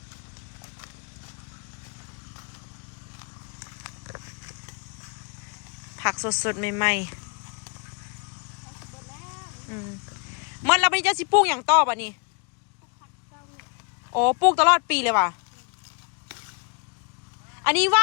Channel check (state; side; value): quieter; right; 36.5 dB